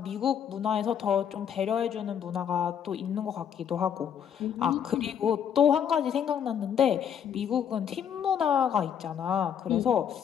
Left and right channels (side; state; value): right; quieter; 8.5 dB